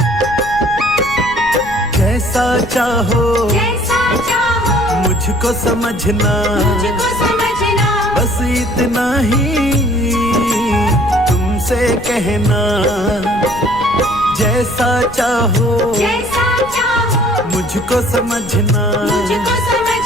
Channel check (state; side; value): noise; left; rumble, 15 dB below the sound